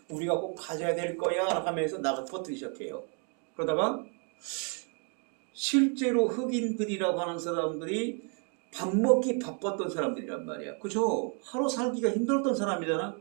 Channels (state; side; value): quieter; left; 39.3 dB